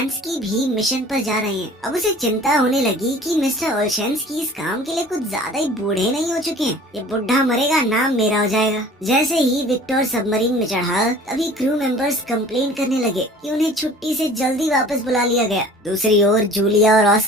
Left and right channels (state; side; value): normal; both; correlation 0.47